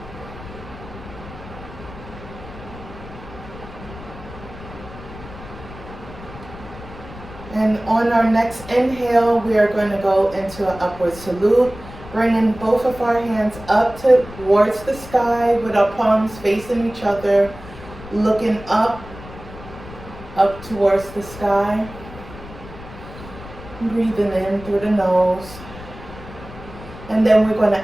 And on our next inhale, we are going to go into an upward salute, bringing both of our hands up towards the sky with our palms facing each other, looking up towards the sky. Breathing in through the nose. And then we're going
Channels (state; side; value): noise; left; rumble, 15 dB below the sound